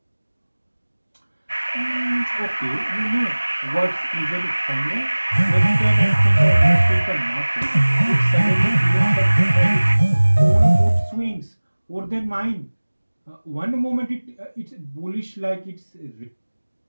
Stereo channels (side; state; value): both; inverted; correlation -1.00